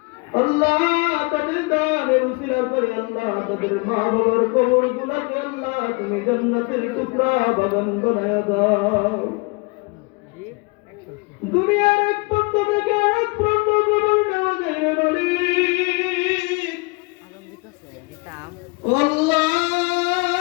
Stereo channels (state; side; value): quieter; right; 29.1 dB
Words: আল্লাহ তাদের দানের উসিলা করে আল্লাহ তাদের মা বাবার কবরগুলোকে আল্লাহ তুমি জান্নাতের টুকরা বাগান বানায়া দাও। দুনিয়ার এক প্রান্ত থেকে এক প্রান্ত কবর নেওয়া যায় মালিক আল্লাহ।